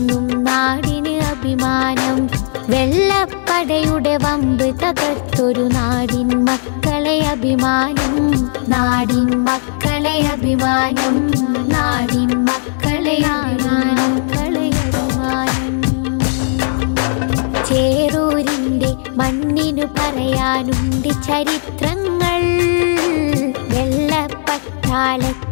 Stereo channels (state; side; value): silent; right; digital silence